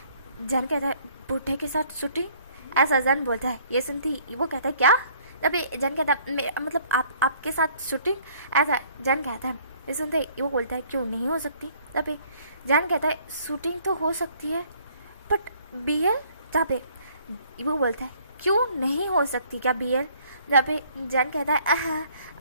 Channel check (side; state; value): both; inverted; correlation -0.60